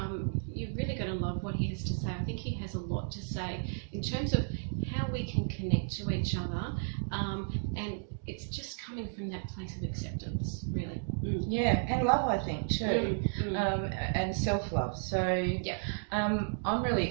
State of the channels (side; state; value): left; silent; digital silence